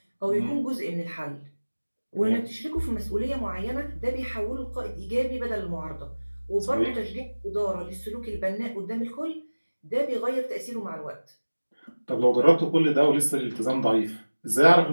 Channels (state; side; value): inverted; both; correlation -1.00